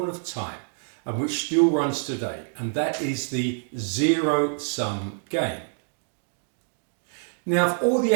of time and which still runs today, and that is the zero-sum game. Now, of all the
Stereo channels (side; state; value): left; silent; 61 dB below the other